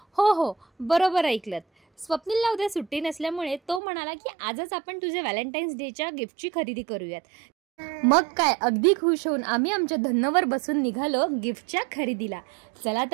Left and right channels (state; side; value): drops out; left; at 3.8 s